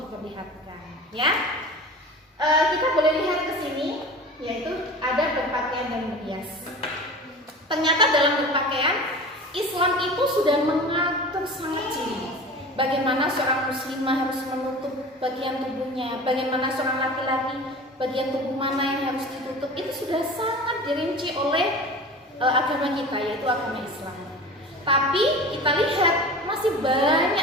diperlihatkan. Ya, kita boleh lihat ke sini, yaitu ada berpakaian dan berhias. Ternyata dalam berpakaian, Islam itu sudah mengatur sangat jeli. Bagaimana seorang muslimah harus menutup bagian tubuhnya, bagaimana seorang laki-laki bagian tubuh mana yang harus ditutup, itu sudah sangat dirinci oleh agama kita, yaitu agama Islam. Tapi kita lihat masih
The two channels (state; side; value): normal; both; correlation 0.36